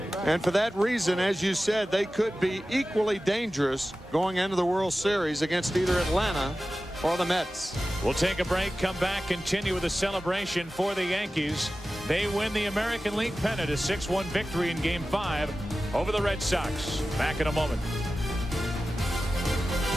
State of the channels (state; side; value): normal; both; correlation 0.95